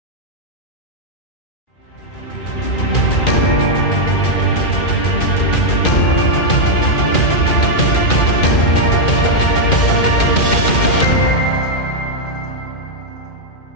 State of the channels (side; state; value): right; late; 2.4 ms